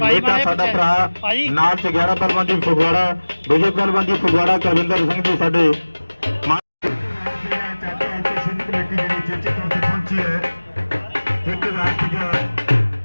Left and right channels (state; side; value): inverted; both; correlation -1.00